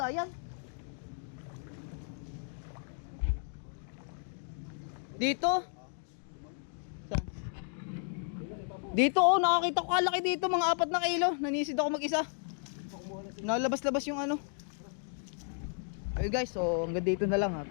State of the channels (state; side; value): silent; right; 55 dB below the other